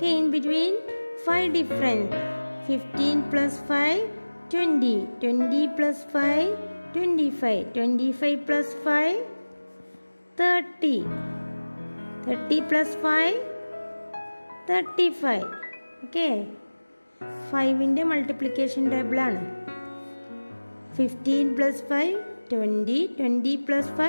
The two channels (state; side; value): inverted; both; correlation -1.00